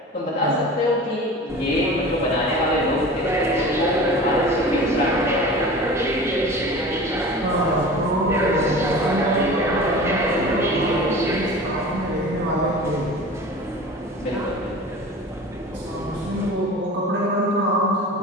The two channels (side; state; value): both; normal; correlation 0.37